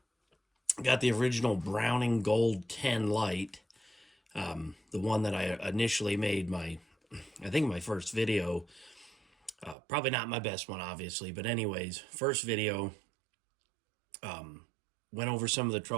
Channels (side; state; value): left; drops out; at 9.8 s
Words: got the original Browning Gold 10 light, the one that I initially made I think my first video. Probably not my best one, obviously, but anyways, first video. Went over some of the